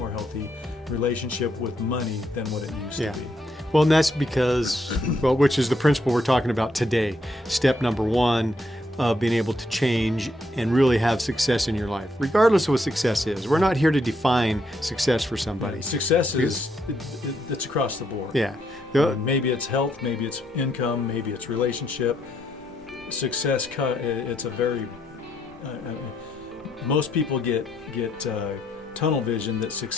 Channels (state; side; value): normal; both; correlation 0.75